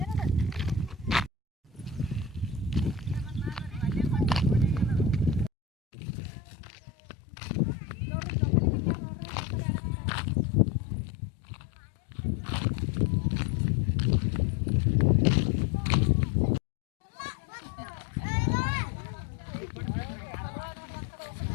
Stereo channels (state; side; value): drops out; right; at 5.5 s